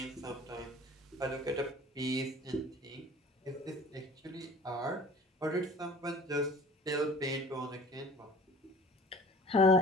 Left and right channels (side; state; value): both; normal; correlation 0.45